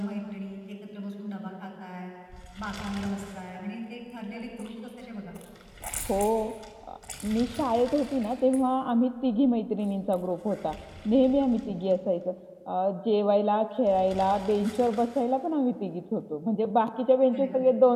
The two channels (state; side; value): identical; both; correlation 1.00